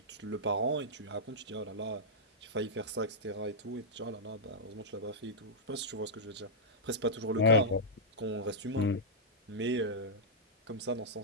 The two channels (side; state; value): both; normal; correlation -0.10